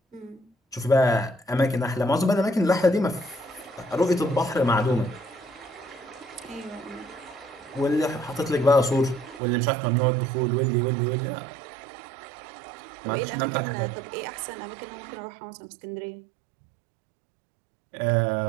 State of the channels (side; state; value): left; drops out; at 9.4 s